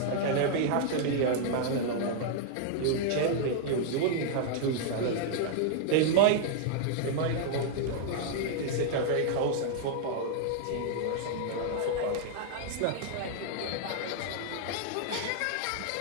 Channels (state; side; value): different; both; correlation -0.01